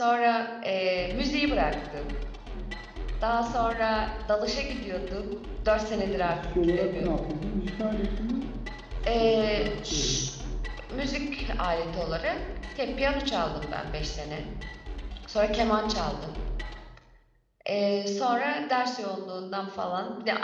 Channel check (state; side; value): identical; both; correlation 1.00